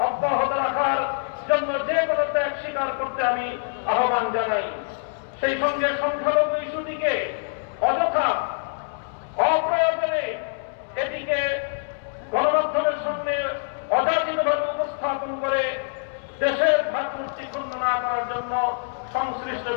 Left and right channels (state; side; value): silent; right; 62 dB below the other